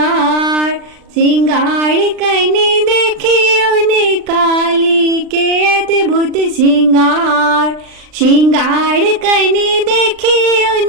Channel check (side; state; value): left; late; 39 ms